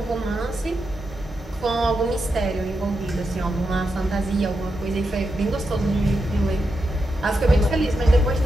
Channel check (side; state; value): both; normal; correlation 0.87